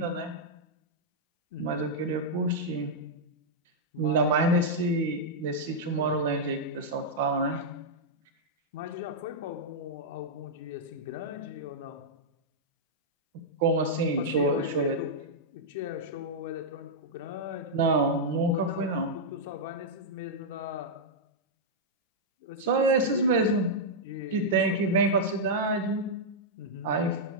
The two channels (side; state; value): both; normal; correlation -0.07